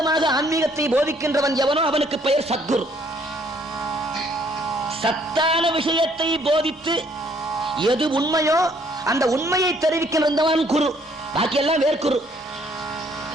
ஆன்மீகத்தை போதிக்கின்றவன் எவனோ அவனுக்கு பெயர் சத்குரு. சத்தான விஷயத்தை போதித்து எது உண்மையோ அந்த உண்மையை தெரிவிக்கின்றவன் குரு. பாக்கியெல்லாம் வேர்க்குரு.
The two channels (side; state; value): both; normal; correlation 0.64